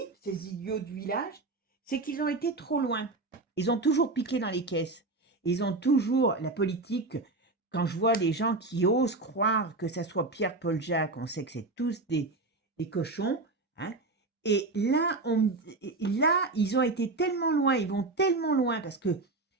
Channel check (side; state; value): left; quieter; 3.3 dB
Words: ces idiots du village, c'est qu'ils ont été trop loin. Ils ont toujours piqué dans les caisses. Ils ont toujours la politique. Quand je vois des gens qui osent croire que ça soit Pierre-Paul Jacques, on sait que c'est tous des cochons. Hein. Et là, ils ont été tellement loin, ils vont tellement loin, parce que